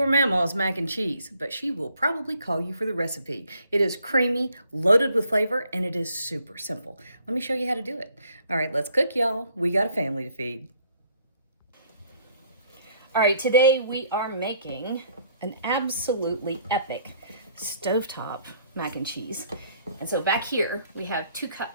mamaw's mac and cheese, but she will probably call you for the recipe. It is creamy, loaded with flavor, and it is super simple. Let me show you how to do it. All right, let's cook, y'all. We got a family to feed. All right, today we are making an absolutely epic stovetop mac and cheese. And so back here, we have 2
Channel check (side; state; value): both; inverted; correlation -0.64